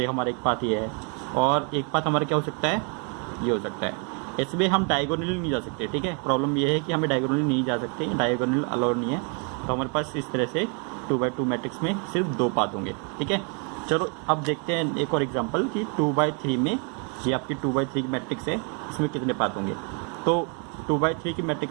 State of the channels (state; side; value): quieter; left; 37.4 dB